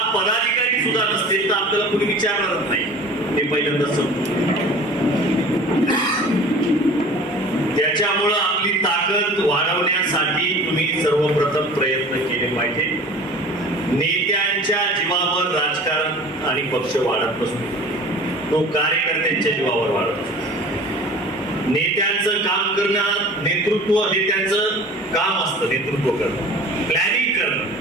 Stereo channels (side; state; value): both; normal; correlation 0.42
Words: पदाधिकारी सुद्धा नसतील तर आपल्याला कोणी विचारणारच नाही, हे पहिल्यांदा समजून. त्याच्यामुळं आपली ताकद वाढवण्यासाठी तुम्ही सर्वप्रथम प्रयत्न केले पाहिजे. नेत्यांच्या जीवावर राजकारण आणि पक्ष वाढत नसतो, तो कार्यकर्त्यांच्या जीवावर वाढत असतो. नेत्यांचं काम करणं, नेतृत्व हे त्यांचं काम असतं, नेतृत्व करणं, प्लॅनिंग करणं.